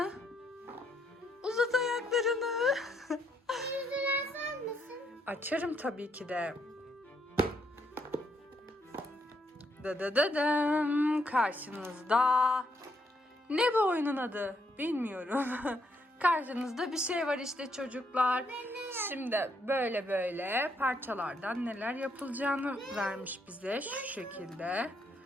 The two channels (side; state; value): both; normal; correlation 0.74